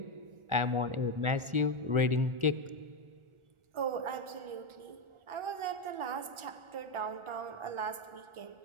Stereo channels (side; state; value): left; late; 1.4 ms